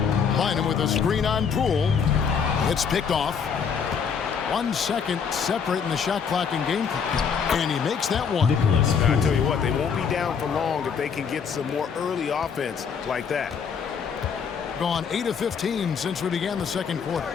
Line him with a screen on Poole. It's picked off. 1 second separating the shot clock and game clock. And he makes that one. I tell you what, they won't be down for long if they can get some more early offense like that. Gone 8 of 15 since we began the second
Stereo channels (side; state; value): right; quieter; 6.6 dB